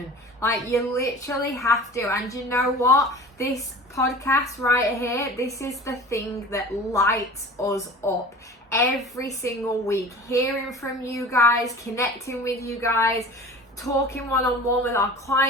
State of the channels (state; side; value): normal; both; correlation 0.40